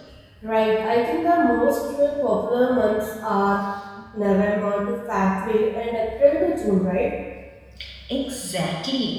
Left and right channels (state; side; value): identical; both; correlation 1.00